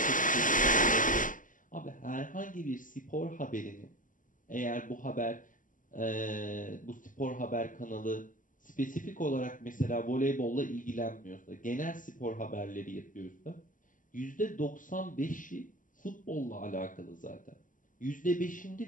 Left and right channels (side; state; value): right; late; 0.38 ms